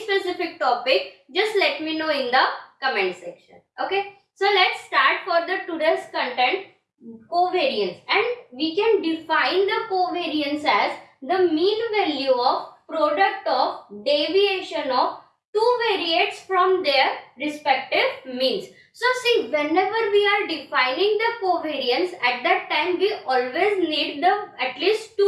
specific topic, just let me know in the comment section. Okay, so let's start for the today's content, covariance. And we can define the covariance as the mean value of product of deviation of two variates from their respective means. So see, whenever we are defining the covariance, at that time we always need the at least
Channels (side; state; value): both; identical; correlation 1.00